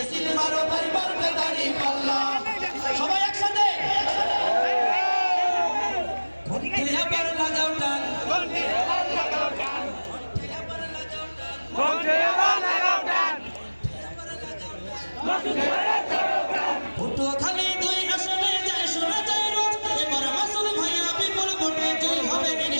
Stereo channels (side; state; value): both; inverted; correlation -1.00